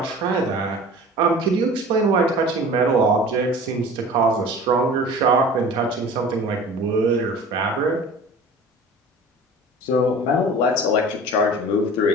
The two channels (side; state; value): both; normal; correlation 0.41